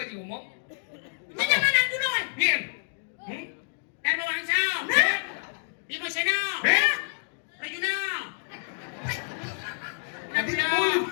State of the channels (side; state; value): right; silent; digital silence